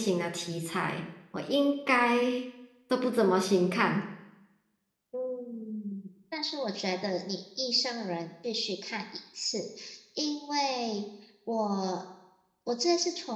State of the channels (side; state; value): both; identical; correlation 1.00